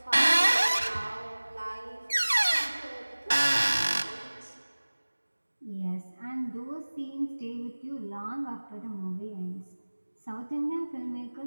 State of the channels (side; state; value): both; inverted; correlation -1.00